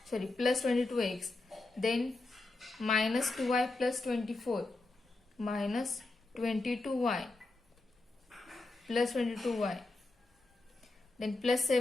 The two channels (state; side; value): quieter; right; 3.2 dB